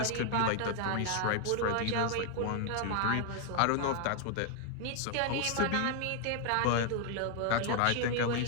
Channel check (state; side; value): different; both; correlation 0.00